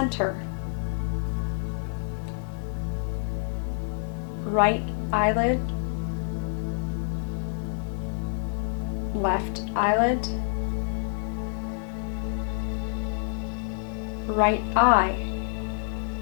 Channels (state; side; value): silent; right; 60 dB below the other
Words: right eyelid, left eyelid, right eye,